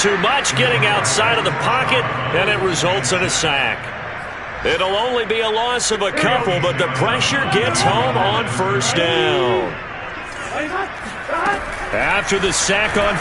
much, getting outside of the pocket, and it results in a sack. It'll only be a loss of a couple, but the pressure gets home on first down. After the sack on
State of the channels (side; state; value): both; identical; correlation 1.00